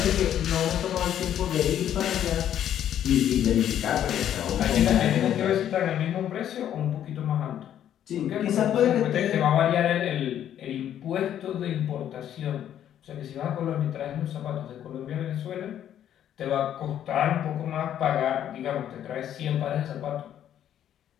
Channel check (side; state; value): right; quieter; 10.5 dB